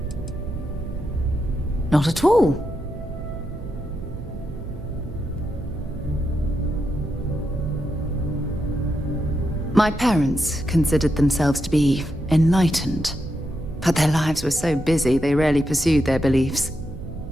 Not at all. My parents considered themselves to be enlightened, but their lives were so busy they rarely pursued their beliefs.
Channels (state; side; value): noise; right; hum, 14 dB below the sound